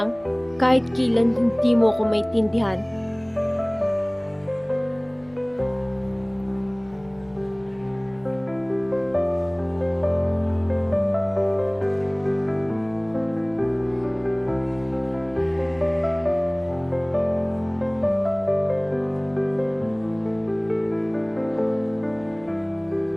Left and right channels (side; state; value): left; noise; hum, 28 dB below the sound